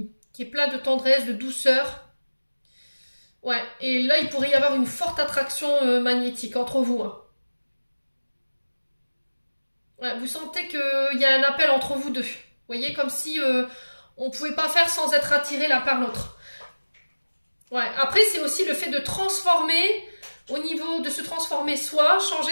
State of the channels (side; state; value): both; inverted; correlation -1.00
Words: est plein de tendresse, de douceur. Ouais, et là, il pourrait y avoir une forte attraction magnétique entre vous. Hein. Ouais, vous sentez qu'il y a un appel entre vous deux. Vous voyez, comme si on ne pouvait pas faire sans être attiré l'un par l'autre. Ouais, après, c'est aussi le fait de transformer, au niveau de se transformer soi,